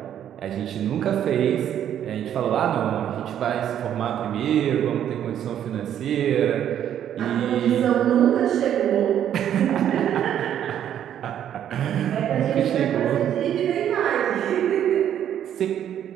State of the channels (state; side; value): quieter; left; 10.2 dB